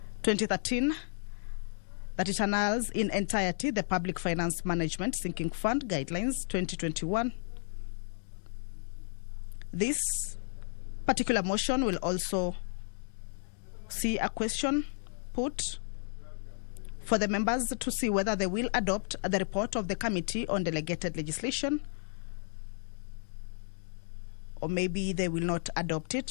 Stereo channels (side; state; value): right; silent; digital silence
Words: 2013 that it annuls in entirety the Public Finance Management Sinking Fund Guidelines 2021. This particular motion will also see a question put for the members to see whether they will adopt the report of the Committee on Delegated Legislation, or maybe they will not adopt